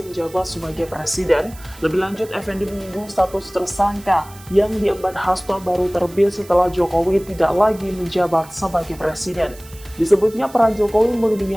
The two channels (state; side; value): noise; right; hiss, 21 dB below the sound